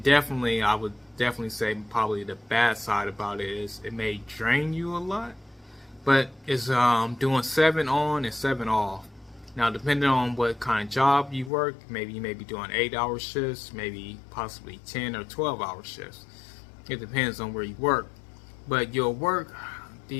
definitely, I would definitely say probably the bad side about it is it may drain you a lot, but it's doing 7 on and 7 off. Now, depending on what kind of job you work, maybe you may be doing 8-hour shifts, maybe possibly 10 or 12-hour shifts. It depends on where you work. But you'll work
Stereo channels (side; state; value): right; drops out; at 11.5 s